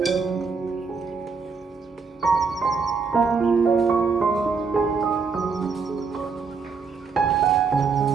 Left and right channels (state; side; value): quieter; left; 5.1 dB